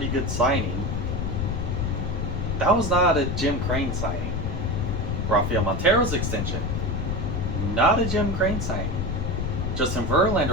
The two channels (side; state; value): left; noise; rumble, 1 dB below the sound